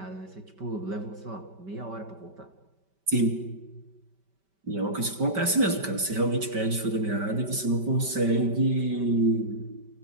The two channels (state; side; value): late; left; 5.2 ms